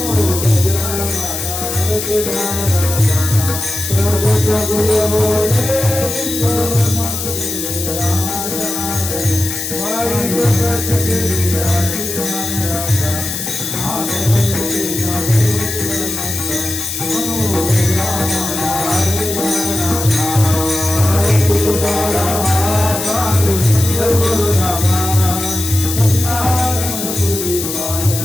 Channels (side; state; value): left; noise; hiss, 5 dB below the sound